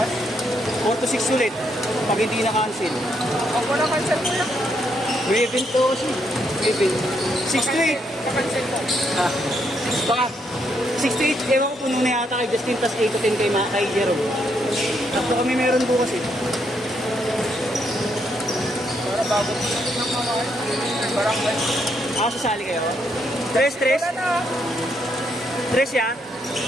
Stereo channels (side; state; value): both; normal; correlation 0.76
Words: 4 to 6 ulit. Pag hindi na-cancel. Pag wala cancel mo lang. May event to kasi. May event. 6 to 8. Pakancel mo. Ah, baka 6 to 8, ewan ko puno na yata kay Justin, tas 8 to 10 kay Jerome. Tapos kami meron bukas eh. Para bago ng mga barangay. Sasali kayo? 3? Wala na. 3 yan?